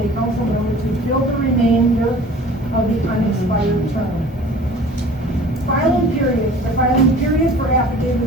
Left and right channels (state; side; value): normal; both; correlation 0.46